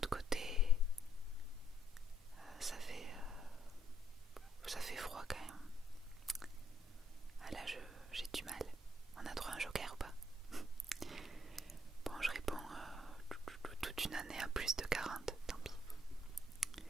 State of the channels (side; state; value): both; normal; correlation 0.69